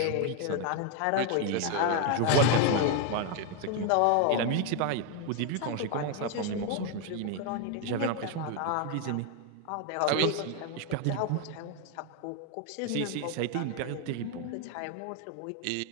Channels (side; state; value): both; different; correlation 0.01